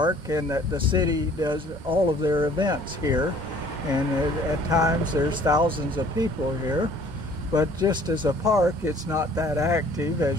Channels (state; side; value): late; left; 2.1 ms